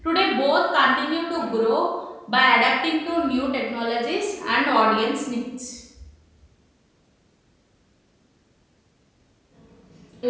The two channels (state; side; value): identical; both; correlation 1.00